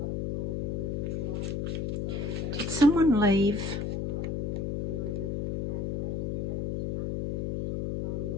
Did someone leave?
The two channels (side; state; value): left; noise; hum, 1 dB below the sound